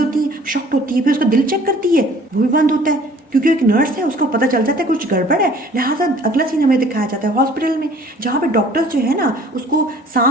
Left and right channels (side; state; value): both; normal; correlation 0.53